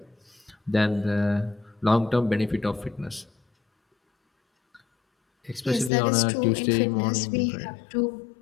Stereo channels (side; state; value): right; drops out; at 5.9 s